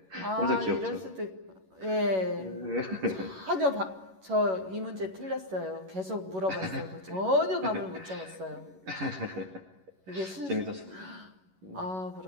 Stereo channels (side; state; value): left; late; 11 ms